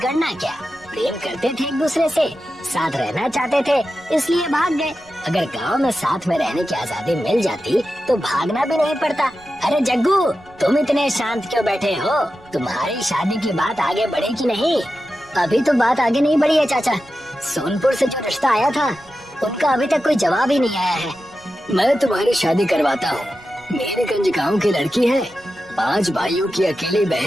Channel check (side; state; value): right; noise; rumble, 27 dB below the sound